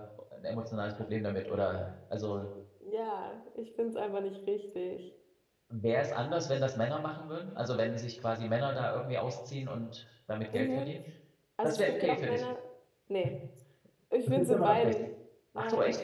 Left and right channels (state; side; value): identical; both; correlation 1.00